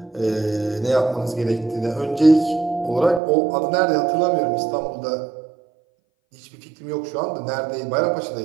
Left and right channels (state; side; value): drops out; left; at 3.2 s